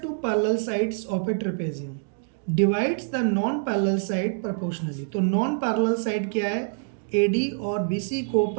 parallel sides of a trapezium divides the non parallel side proportionally. तो नॉन पैरेलल साइड क्या है, AD और BC को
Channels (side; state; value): left; silent; digital silence